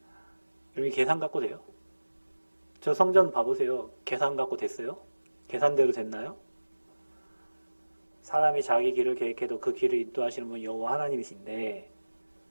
여러분 계산 갖고 돼요? 저 성전 봐보세요. 계산 갖고 됐어요? 계산대로 됐나요? 사람이 자기 길을 계획해도 그 길을 인도하시는 분 여호와 하나님이신데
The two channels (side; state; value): both; inverted; correlation -1.00